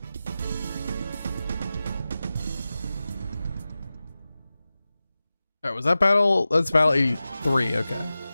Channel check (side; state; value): both; inverted; correlation -0.95